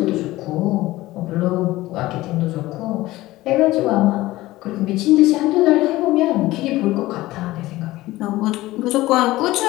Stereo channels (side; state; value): right; quieter; 17.7 dB